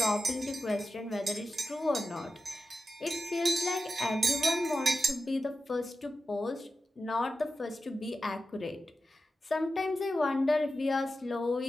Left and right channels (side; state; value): both; normal; correlation 0.91